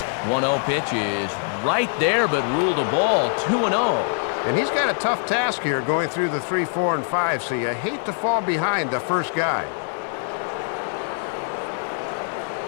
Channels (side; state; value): right; silent; 63 dB below the other